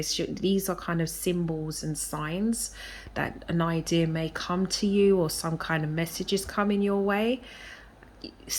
these are kind of symbols and signs that an idea may come to you, or some kind of messages coming your way,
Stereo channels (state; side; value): identical; both; correlation 1.00